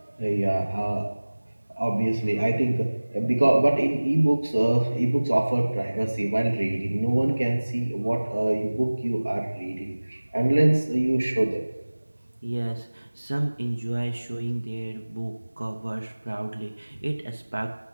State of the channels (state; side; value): inverted; both; correlation -1.00